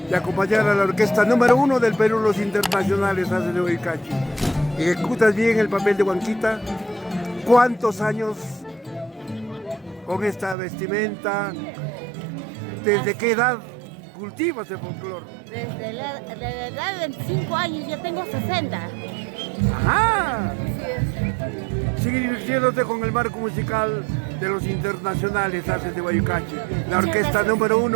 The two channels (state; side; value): drops out; left; at 10.6 s